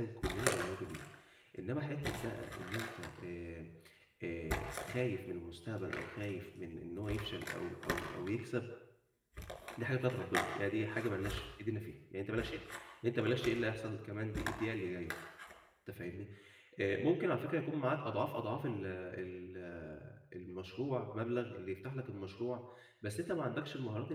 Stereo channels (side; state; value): both; identical; correlation 1.00